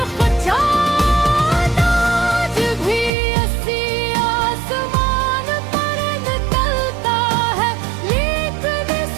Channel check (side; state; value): left; drops out; at 3.1 s